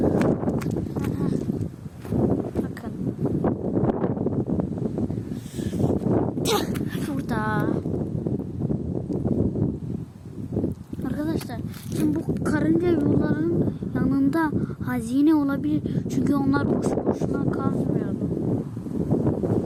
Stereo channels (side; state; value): both; identical; correlation 1.00